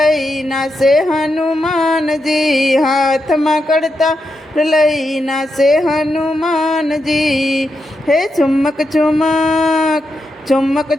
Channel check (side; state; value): both; normal; correlation 0.85